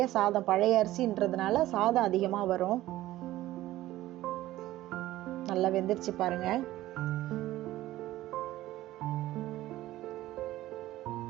சாதம், பழைய அரிசின்றதுனால சாதம் அதிகமாக வரும். நல்லா வெந்துருச்சு பாருங்க.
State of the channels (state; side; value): quieter; left; 15.6 dB